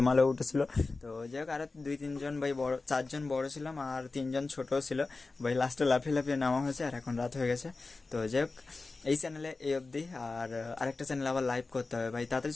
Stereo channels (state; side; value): quieter; right; 3.7 dB